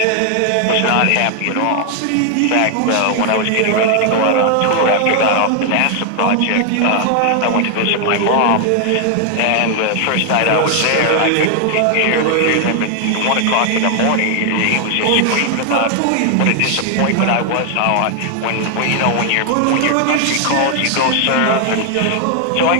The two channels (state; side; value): different; both; correlation 0.00